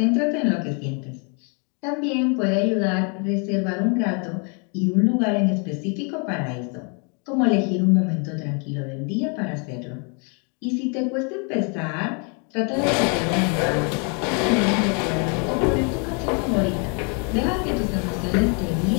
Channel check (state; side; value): quieter; right; 36.9 dB